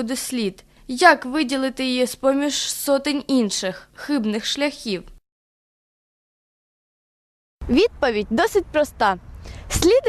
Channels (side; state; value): both; identical; correlation 1.00